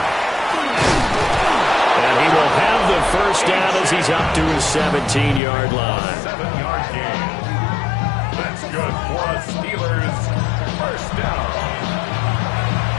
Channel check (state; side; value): drops out; right; at 5.4 s